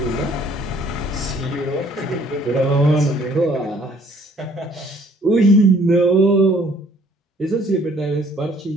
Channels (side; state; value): both; normal; correlation 0.60